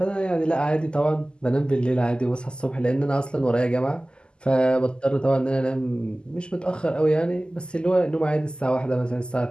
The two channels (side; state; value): right; late; 0.048 ms